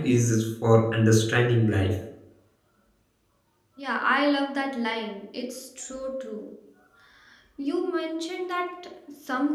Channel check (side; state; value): both; identical; correlation 1.00